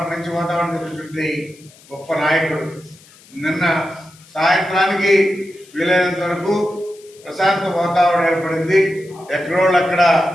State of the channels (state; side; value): noise; left; hiss, 25 dB below the sound